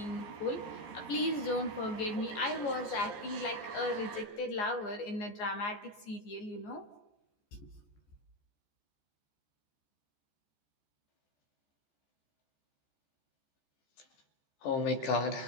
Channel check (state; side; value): late; right; 15 ms